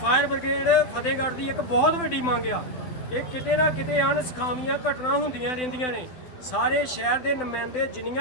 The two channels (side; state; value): right; late; 12 ms